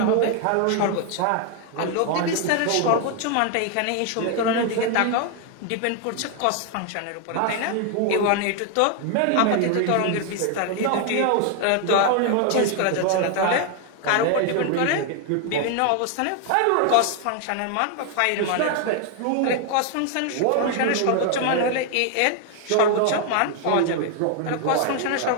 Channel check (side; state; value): both; different; correlation 0.00